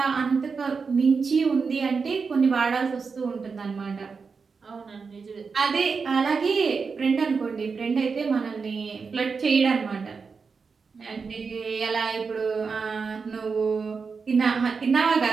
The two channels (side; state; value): left; quieter; 5.1 dB